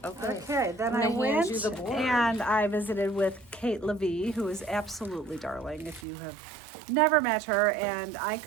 Okay, then I'm I gonna hand went you the board. and I visited with Kate Levy, who is absolutely darling if you have never met her, and I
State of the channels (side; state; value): left; drops out; at 6.1 s